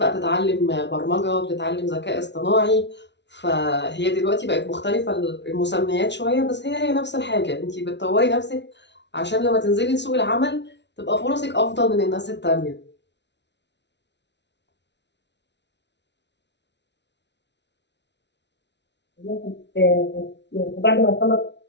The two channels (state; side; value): late; right; 0.51 ms